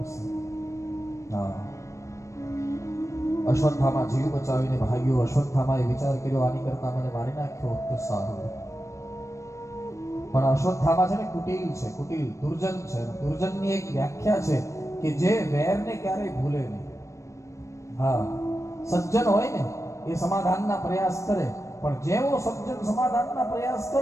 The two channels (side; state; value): right; late; 0.15 ms